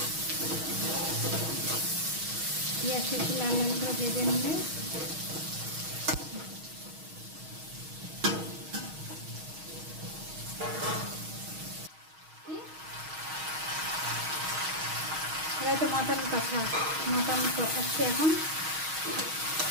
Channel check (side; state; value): left; late; 6.3 ms